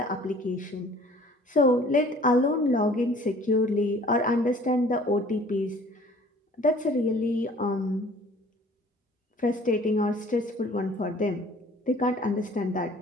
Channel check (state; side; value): normal; both; correlation 0.52